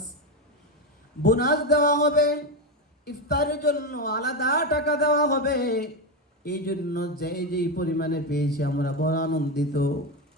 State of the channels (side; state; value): both; normal; correlation 0.11